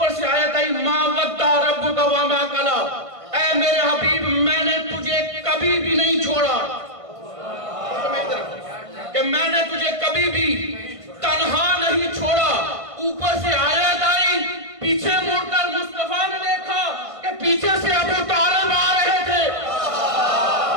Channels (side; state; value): left; late; 1.5 ms